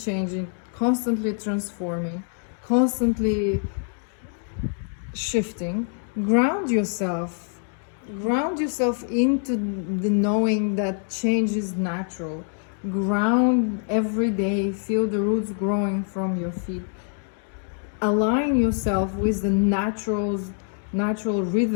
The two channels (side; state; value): right; silent; 57 dB below the other